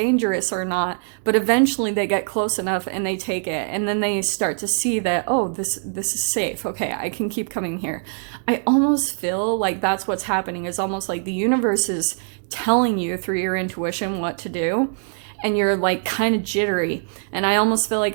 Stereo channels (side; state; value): left; silent; 64 dB below the other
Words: or not, but eventually they get close enough and they take it, and then they start to see that, oh, this is safe, okay, I can keep coming here. I almost feel like that's what's happening. It's almost like the universe is telling you through your intuition what to do, and you're like kind of jittery. And I almost feel